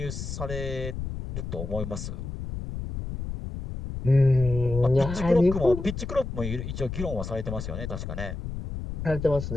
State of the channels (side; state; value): left; noise; rumble, 6 dB below the sound